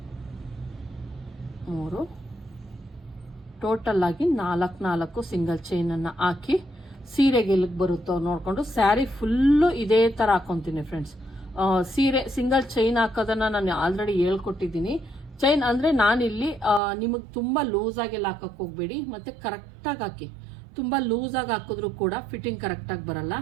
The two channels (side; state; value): left; drops out; at 16.8 s